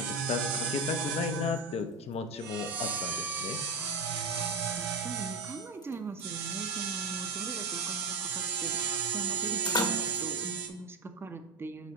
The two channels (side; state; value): left; quieter; 3.0 dB